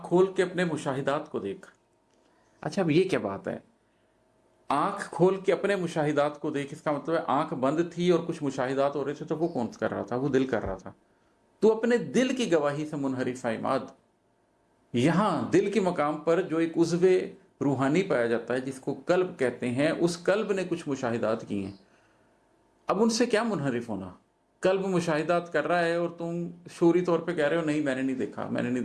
کھول کے اپنے مشاہدات کو دیکھ۔ اچھا، اب یہ کیا بات ہے؟ آنکھ کھول کے اپنے مشاہدات کو دیکھ، اس کا مطلب ہے آنکھ بند تھی اور کچھ مشاہدات ہو رہے تھے، تو وہ کون کر رہا تھا؟ وہ دل کر رہا تھا۔ تو اپنے دل کی گواہی سے منحرف ہے عماد، یہاں دل کے مقام پر جو ایک عضو روحانی پایا جاتا ہے جس کو قلب کہتے ہیں، اس قلب نے کچھ مشاہدات کی ہیں، اب ان سے کیا منحرف ہونا؟ قلب مشاہدات کر رہا ہے اور تم شعوری طور پہ کہہ رہے ہو نہیں میں نے نہیں دیکھا، میں نے نہیں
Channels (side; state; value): both; identical; correlation 1.00